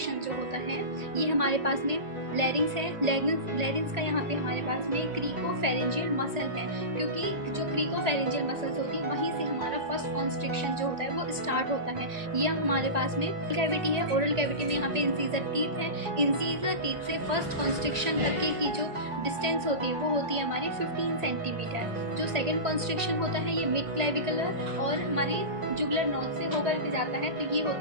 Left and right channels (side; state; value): left; late; 1.8 ms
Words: जो होता है ये हमारे पास में लैरिंग्स है। लैरिंग्स का यहाँ पे हमारे पास में क्रीकोफेरेंजियल मसल है, क्योंकि जो क्रीकोफेरेंजियल मसल्स होती है वहीं से हमारा फर्स्ट कॉन्स्ट्रिक्शन जो होता है वो स्टार्ट होता है। ये हमारे पास में कैविटी है। ओरल कैविटी में यहाँ पे इंसीजर टीथ है। इंसीजर टीथ से फर्स्ट कॉन्स्ट्रिक्शन तक की जो डिस्टेंस होती है वो होती है हमारी 15 सेंटीमीटर। जो सेकंड कॉन्स्ट्रिक्शन होता है ये मिड क्लेविकुलर और हमारी जुगुलर नोज से होकर के जाता है, तो ये होता